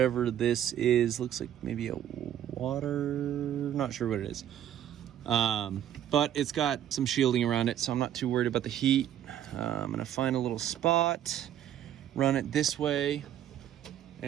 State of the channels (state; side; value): quieter; left; 10.9 dB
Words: this is. Looks like maybe a water, not sure what it is. But it's got some shielding around it, so I'm not too worried about the heat. I'm gonna find a little spot, run it this way,